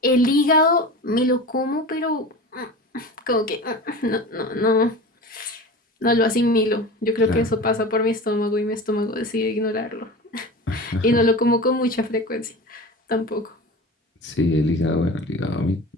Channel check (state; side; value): normal; both; correlation 0.32